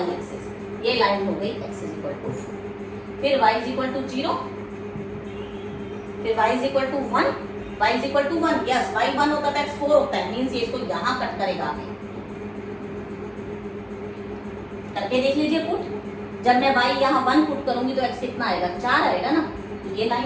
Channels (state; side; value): identical; both; correlation 1.00